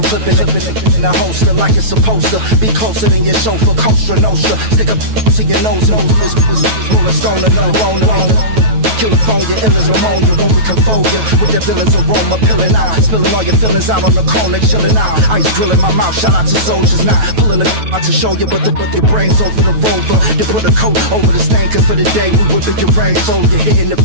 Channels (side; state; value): left; late; 9.2 ms